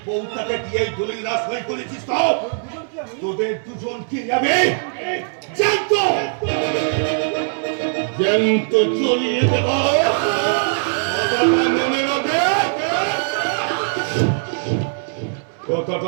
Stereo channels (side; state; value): left; silent; 66 dB below the other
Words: বউটাকে দিয়ে এই দলিল না সই করেছিস তো তোদের দুজনকে যাবে জ্যান্ত চলিয়ে দেব। মনে রাখবে